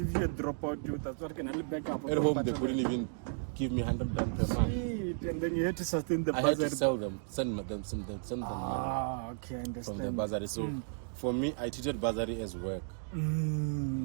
if you had dropped out, that's what can only back up. At home, they couldn't even give me 100 rand per month. And then you had to sustain the bursary. I had to sell them, send them money. Okay, I understand. From the bursary. So for me, I treated bursary as work.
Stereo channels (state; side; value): silent; left; digital silence